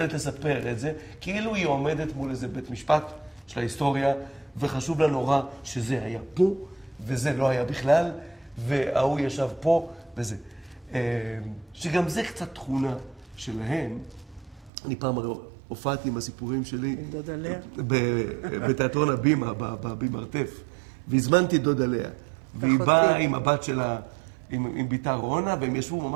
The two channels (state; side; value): drops out; left; at 14.7 s